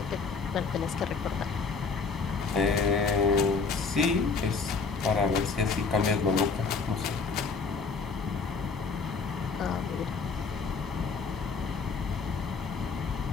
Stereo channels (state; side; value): quieter; right; 4.8 dB